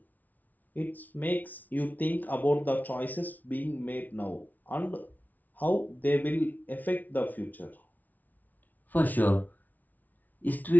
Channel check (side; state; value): right; late; 0.079 ms